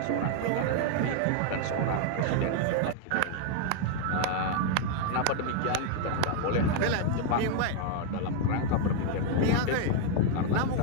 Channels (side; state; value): both; different; correlation 0.00